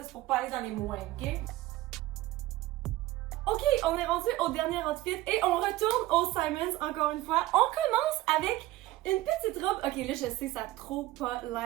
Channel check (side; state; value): left; quieter; 17.0 dB